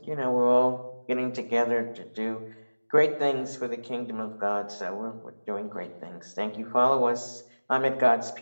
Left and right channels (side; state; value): both; inverted; correlation -1.00